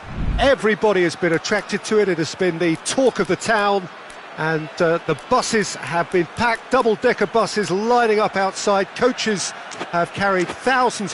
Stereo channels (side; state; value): both; identical; correlation 1.00